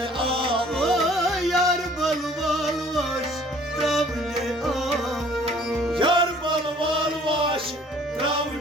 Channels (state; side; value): normal; both; correlation 0.55